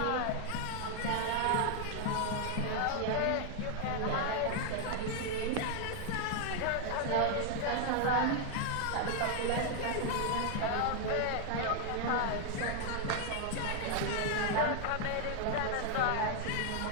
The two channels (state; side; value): different; both; correlation 0.01